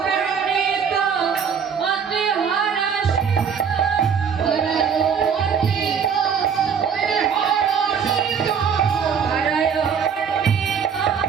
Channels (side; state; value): left; quieter; 6.9 dB